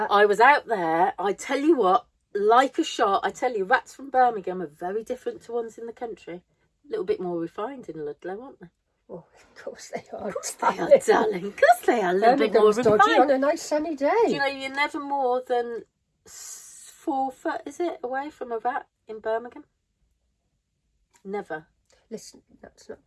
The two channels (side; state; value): both; identical; correlation 1.00